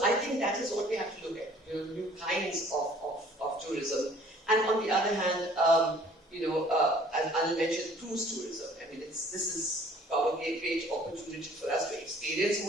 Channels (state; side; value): normal; both; correlation 0.54